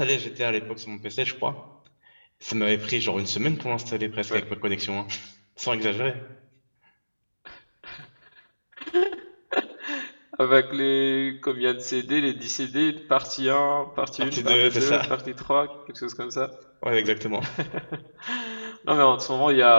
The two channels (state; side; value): inverted; both; correlation -1.00